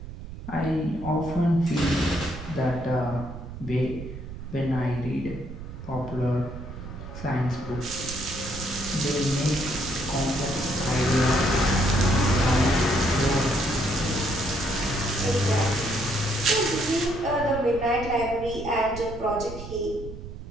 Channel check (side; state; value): right; noise; rumble, 11 dB below the sound